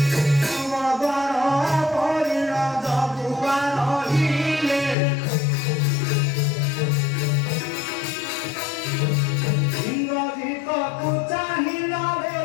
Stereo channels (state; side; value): drops out; right; at 5.0 s